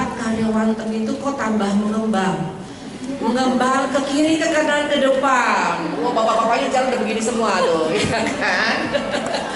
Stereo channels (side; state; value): both; identical; correlation 1.00